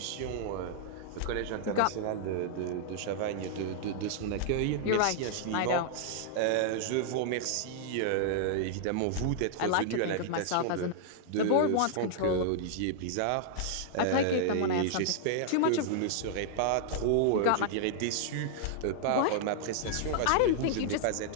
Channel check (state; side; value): different; both; correlation -0.01